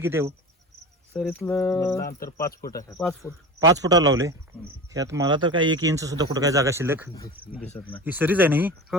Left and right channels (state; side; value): normal; both; correlation 0.31